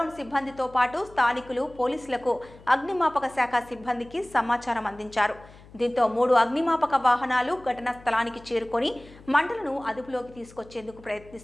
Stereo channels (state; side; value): noise; left; hum, 22 dB below the sound